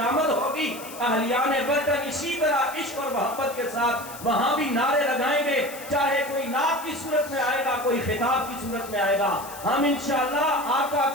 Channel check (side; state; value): left; noise; hiss, 15 dB below the sound